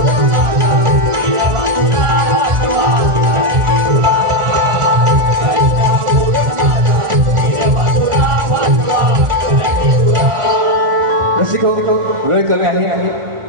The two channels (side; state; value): left; late; 1.4 ms